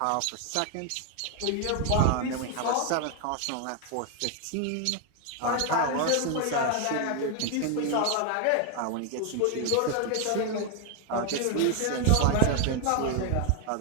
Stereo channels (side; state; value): both; different; correlation 0.00